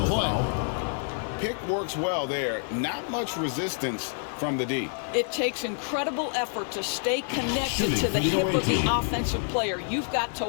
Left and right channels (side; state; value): right; silent; 60 dB below the other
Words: play. Pick works well there. Not much resistance from the D. It takes incredible effort to stay connected to the hip of the offensive player. You've got to